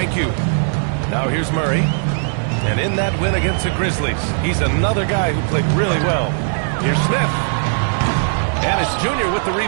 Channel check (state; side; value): silent; left; 67 dB below the other